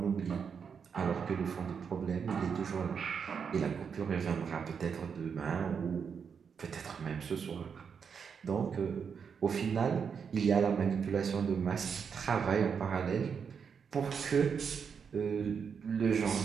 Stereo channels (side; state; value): left; quieter; 6.5 dB